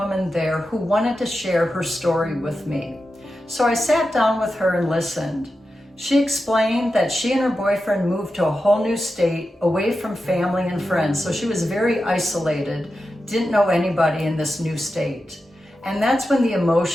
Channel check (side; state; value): both; normal; correlation 0.91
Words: there who wanted to share her story with me. So I sat down with her and listened. She explained that she and her boyfriend moved to a whole new state, away from family and friends. So she was very isolated, didn't know anybody in this new state. And that's when the